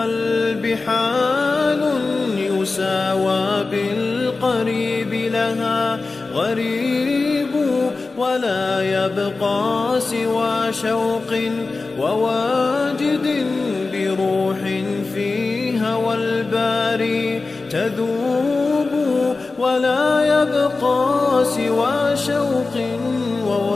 حال يساوى بالقريب لها غريب ولا يبقى سوى شوق وواجد بروح في هوى الباري تذوب ولا يبقى سوى شوق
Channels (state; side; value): quieter; right; 3.7 dB